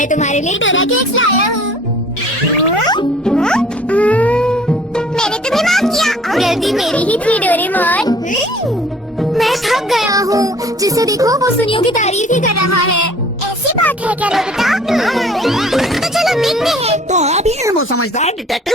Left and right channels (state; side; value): normal; both; correlation 0.52